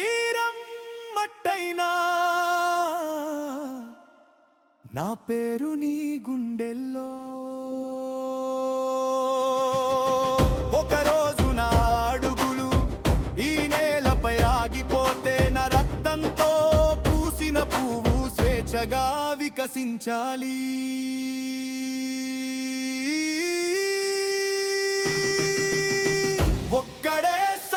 మట్టైనా, నా పేరు నీ గుండెల్లో. ఒకరోజు నా అడుగులు ఈ నేలపై ఆగిపోతే, నా రక్తంతో పూసిన పువ్వు స్వేచ్ఛగా వికసించాలి. ఒక్కడే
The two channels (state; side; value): identical; both; correlation 1.00